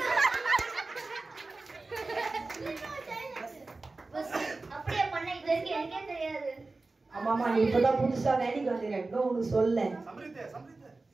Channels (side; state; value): left; quieter; 3.5 dB